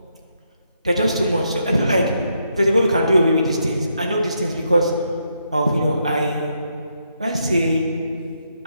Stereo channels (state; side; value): inverted; both; correlation -0.78